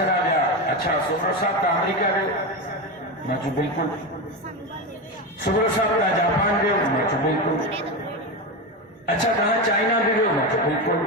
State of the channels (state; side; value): normal; both; correlation 0.17